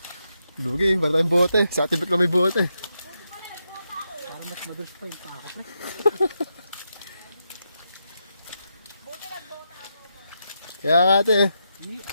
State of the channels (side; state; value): both; inverted; correlation -0.84